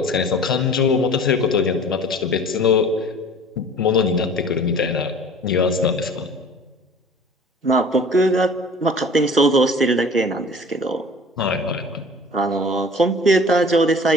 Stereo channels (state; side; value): normal; both; correlation 0.45